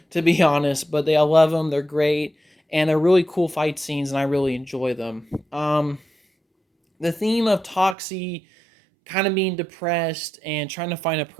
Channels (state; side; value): drops out; left; at 8.0 s